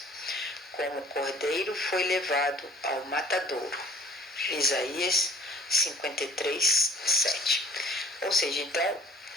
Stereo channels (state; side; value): normal; both; correlation 0.51